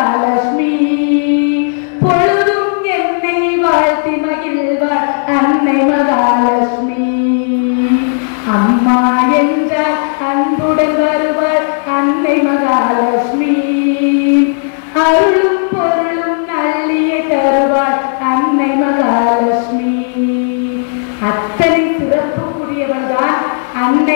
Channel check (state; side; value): silent; right; digital silence